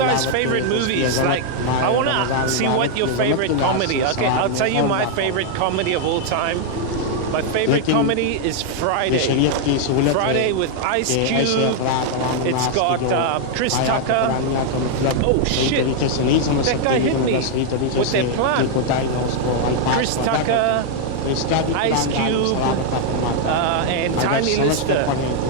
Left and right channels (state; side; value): different; both; correlation 0.00